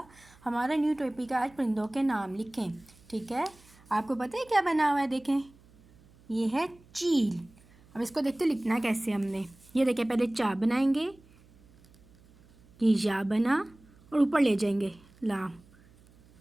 हमारा न्यू टॉपिक है आज परिंदों के नाम लिखें, ठीक है। आपको पता है क्या बना हुआ है? देखें, ये है चील। अब इसको देखते लिखना कैसे हमने। ये देखें, पहले चा बनाएंगे, ये या बना और ऊपर ले जाएंगे लाम।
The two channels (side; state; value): right; noise; hum, 27 dB below the sound